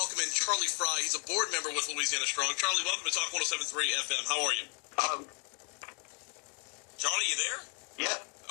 in Charlie Frey. He's a board member with Louisiana Strong. Charlie, welcome to Talk 107.3 FM. How are you? Charlie, you there? Yeah.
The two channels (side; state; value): right; quieter; 37.3 dB